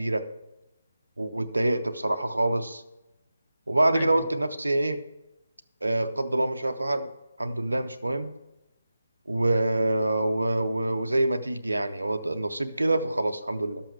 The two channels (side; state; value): both; inverted; correlation -0.93